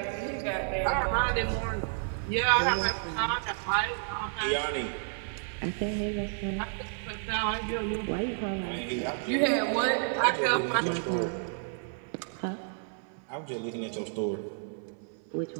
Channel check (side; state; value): left; silent; 57 dB below the other